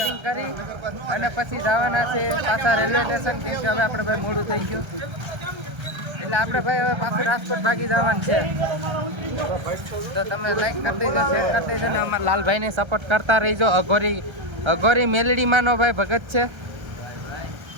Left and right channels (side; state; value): left; late; 1.3 ms